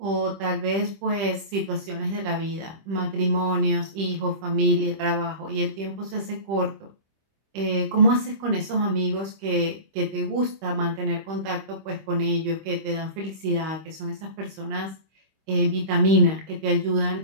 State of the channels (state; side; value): late; left; 25 ms